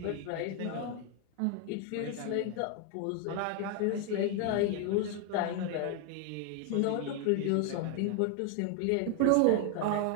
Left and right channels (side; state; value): both; different; correlation 0.01